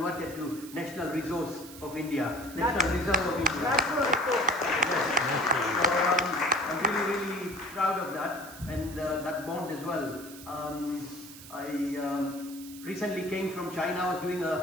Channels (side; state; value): right; noise; hiss, 16 dB below the sound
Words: to National Resource of India. National Reserve of India. Yes. So I'm really proud of that, and that bond as well. I recently came from China. I was doing